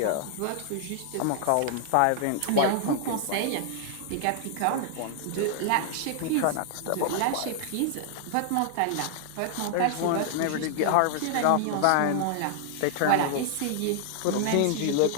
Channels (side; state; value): both; different; correlation -0.01